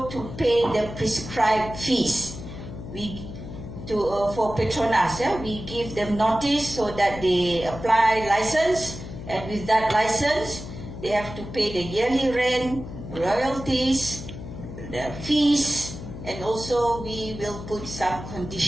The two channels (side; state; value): left; noise; hum, 11 dB below the sound